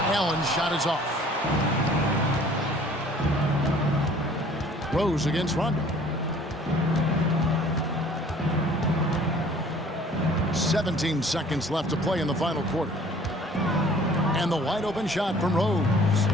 Allen's shot is off. Rose against Rondo. 17 seconds left to play in the final quarter. And the wide open shot from Rose.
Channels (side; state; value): both; normal; correlation 0.52